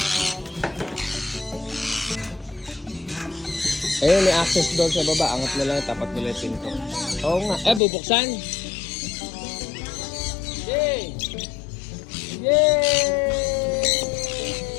Ayun, may access doon sa baba. Angat na lang, tapat nila yung pinto. Oo nga. Bubuksan! Yay! Yay!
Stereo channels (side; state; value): right; drops out; at 7.8 s